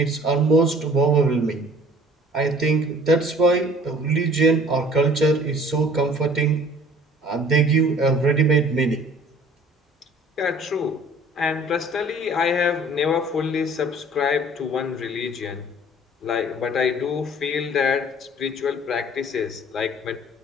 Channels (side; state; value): both; normal; correlation 0.51